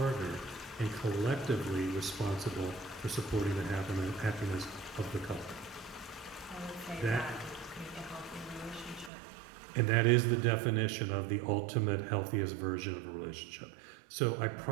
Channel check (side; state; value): left; drops out; at 9.1 s